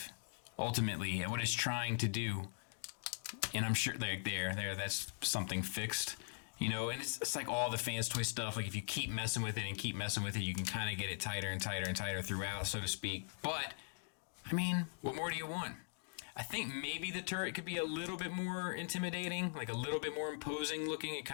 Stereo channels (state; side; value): silent; right; digital silence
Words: ultimately, at what it's trying to do. And I'm sure there, that's something fixed. You know, and it's like all the Fanstoys stuff. Like if you keep messing with it and keep messing with it, you can kind of get it tighter and tighter and tighter throughout, so to speak. But, I mean, what more do you want? I think maybe the turret could be a little bit more intimidating, like a little bit more imposing looking. It